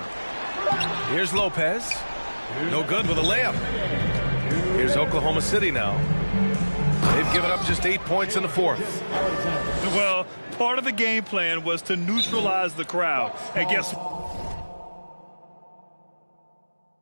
Here's Lopez. No good with a layup. Here's Oklahoma City now. They've given up just 8 points in the fourth. Well, part of the game plan was to neutralize the crowd. And guess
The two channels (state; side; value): inverted; both; correlation -1.00